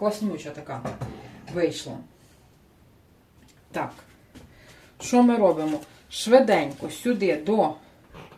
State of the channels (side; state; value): both; identical; correlation 1.00